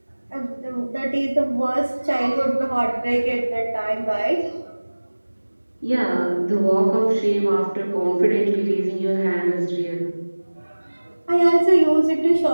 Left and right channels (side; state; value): both; inverted; correlation -1.00